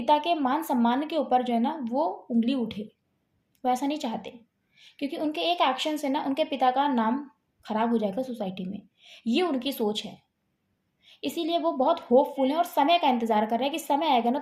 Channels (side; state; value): both; identical; correlation 1.00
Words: के मान-सम्मान के ऊपर जो है ना वो उँगली उठे, वो ऐसा नहीं चाहते। क्योंकि उनके एक एक्शन से ना उनके पिता का नाम खराब हो जाएगा सोसाइटी में, ये उनकी सोच है। इसीलिए वो बहुत होपफुल हैं और समय का इंतज़ार कर रहे हैं कि समय आएगा ना